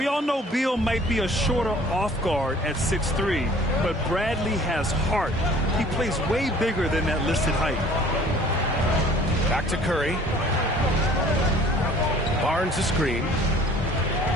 all know Beal might be a shorter off guard at 6'3", but Bradley has heart. He plays way bigger than that listed height. Back to Curry. Barnes the screen.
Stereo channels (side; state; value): both; normal; correlation 0.51